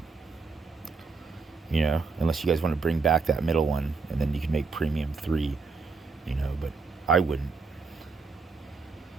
Unless you guys want to bring back that middle one, and then you can make premium 3. But I wouldn't,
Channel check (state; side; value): quieter; left; 4.5 dB